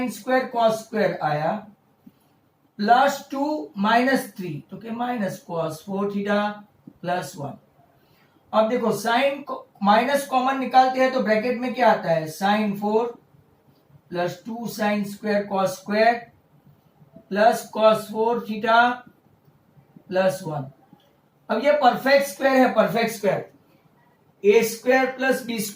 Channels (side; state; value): both; identical; correlation 1.00